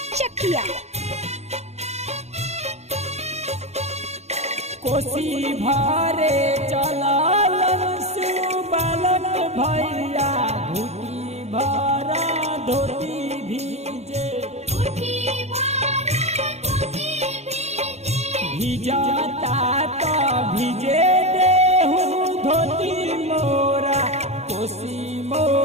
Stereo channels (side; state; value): left; late; 0.31 ms